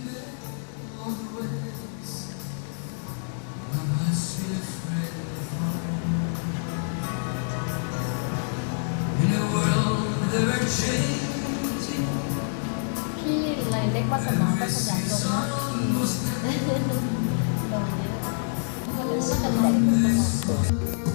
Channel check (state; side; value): silent; right; 60 dB below the other